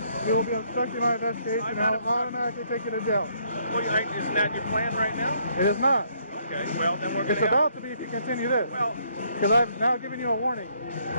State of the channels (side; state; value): both; inverted; correlation -0.69